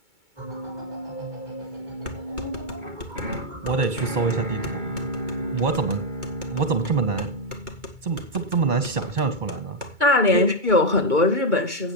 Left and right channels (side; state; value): left; late; 2.2 ms